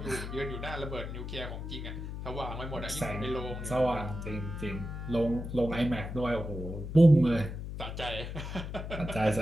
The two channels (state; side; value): noise; left; hum, 7 dB below the sound